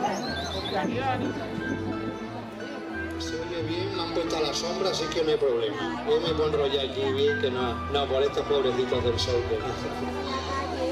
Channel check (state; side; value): identical; both; correlation 1.00